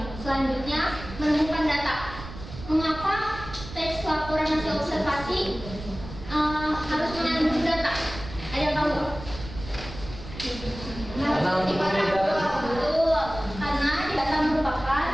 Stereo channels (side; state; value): right; noise; rumble, 12 dB below the sound